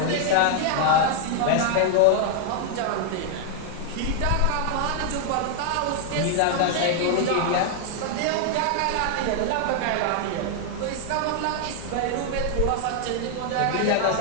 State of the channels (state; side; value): different; both; correlation 0.00